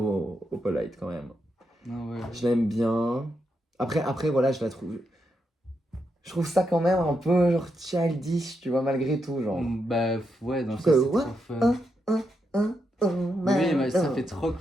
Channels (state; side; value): normal; both; correlation 0.83